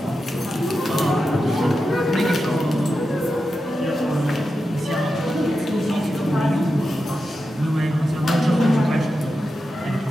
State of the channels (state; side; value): normal; both; correlation 0.90